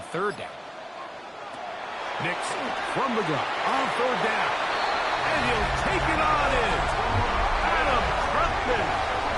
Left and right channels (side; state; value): both; identical; correlation 1.00